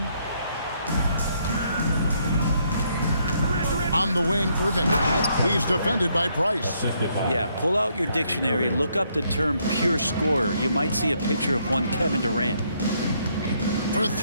On the wing, Irving. He's defended by Price. Yeah, pull out your dictionary, look up the term pure scorer. You might see a picture of one Kevin Durant. For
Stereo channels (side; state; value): both; inverted; correlation -0.72